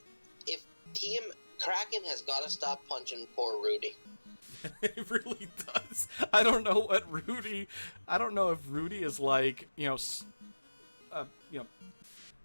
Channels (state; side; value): inverted; both; correlation -1.00